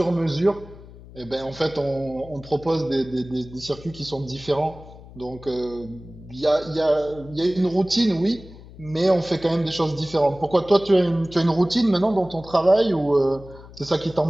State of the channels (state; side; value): noise; left; hum, 19 dB below the sound